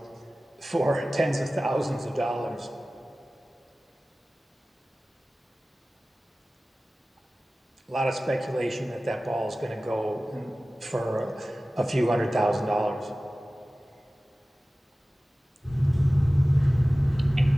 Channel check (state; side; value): normal; both; correlation 0.97